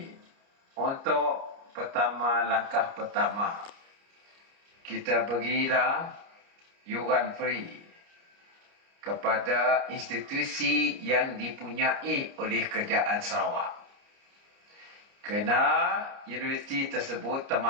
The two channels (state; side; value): late; left; 29 ms